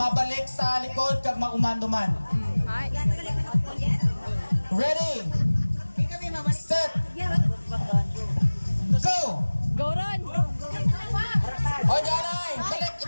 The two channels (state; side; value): inverted; both; correlation -1.00